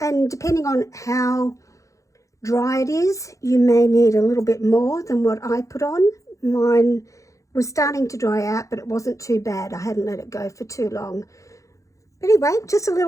And depending on how dry it is, you may need a little bit more than what I put on. Mine was starting to dry out, but it wasn't too bad. I hadn't let it go for too long. Anyway, just a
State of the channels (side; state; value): right; late; 0.15 ms